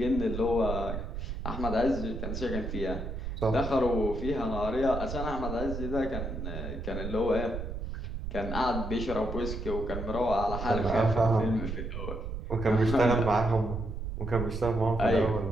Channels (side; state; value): right; noise; rumble, 5 dB below the sound